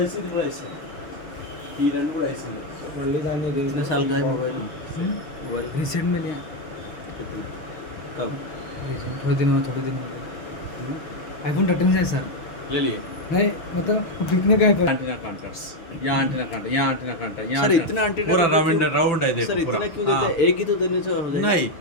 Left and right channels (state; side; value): late; right; 6.4 ms